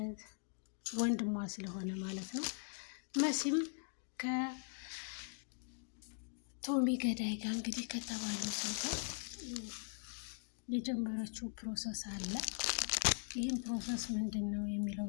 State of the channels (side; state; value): right; silent; 51 dB below the other